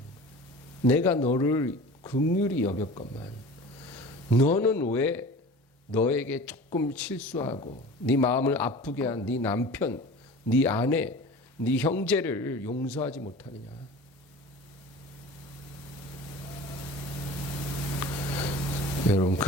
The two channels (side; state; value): both; normal; correlation 0.38